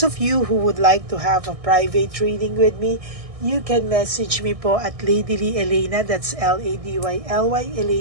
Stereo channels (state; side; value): late; left; 1.6 ms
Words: of you who would like to have a private reading with me, you can message me po at Ladyly Elena, that's Ladyly